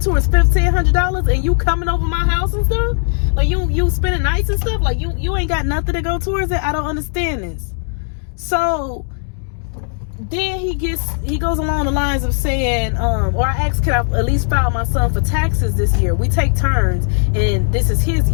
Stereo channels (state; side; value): silent; right; 68 dB below the other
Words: $1,500, and you coming over my house and stuff? Like, you spending nights and stuff? Like, you ain't got nothing to go towards it? I don't understand this. So then he goes along the lines of saying, or I asked, can I at least file my son for taxes this year? We take turns, and this is his